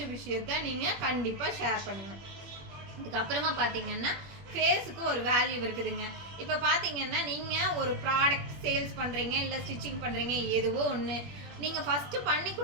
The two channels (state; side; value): late; left; 21 ms